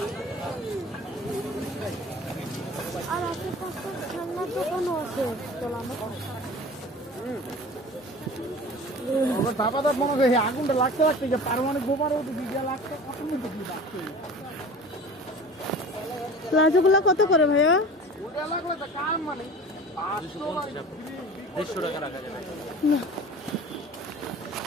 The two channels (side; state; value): both; normal; correlation 0.39